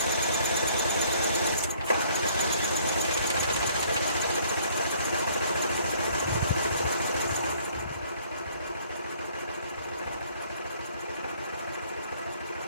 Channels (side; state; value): both; inverted; correlation -0.60